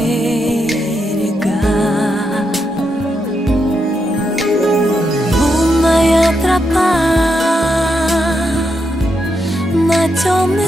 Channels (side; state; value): both; normal; correlation 0.82